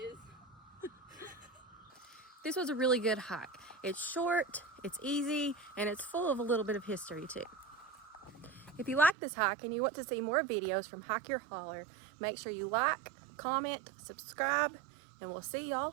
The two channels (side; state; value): left; drops out; at 9.2 s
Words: This was a really good hike. It's short, it's easy, and it's full of a little bit of history too. If you like this hike and you want to see more videos from Hike Your Holler, make sure you like, comment, subscribe, and we'll see